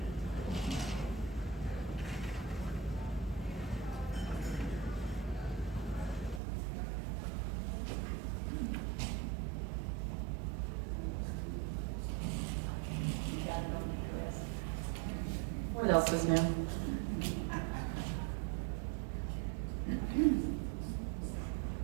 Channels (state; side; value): drops out; left; at 6.4 s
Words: What else is new?